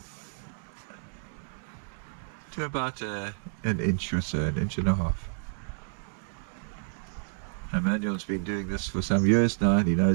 to about an inch or so, an inch and a half. Emmanuel's been doing this for some years now, and he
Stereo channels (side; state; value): left; silent; 58 dB below the other